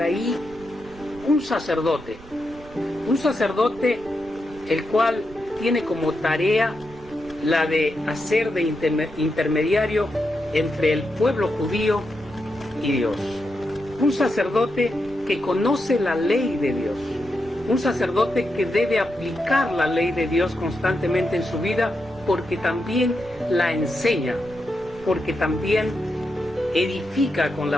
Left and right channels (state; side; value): noise; right; rumble, 20 dB below the sound